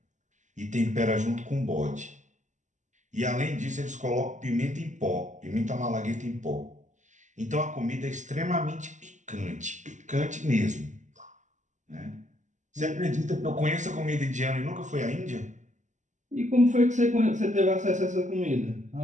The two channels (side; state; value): left; late; 0.35 ms